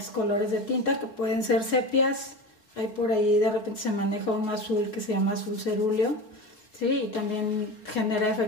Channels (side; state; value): right; late; 4.0 ms